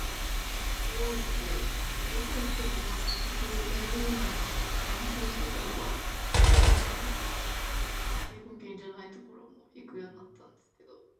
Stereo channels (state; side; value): identical; both; correlation 1.00